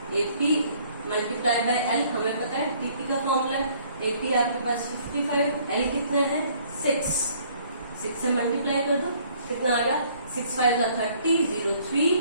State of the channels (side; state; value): both; inverted; correlation -0.60